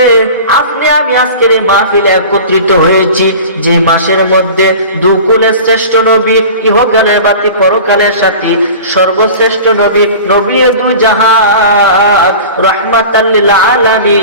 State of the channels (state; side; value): inverted; both; correlation -0.38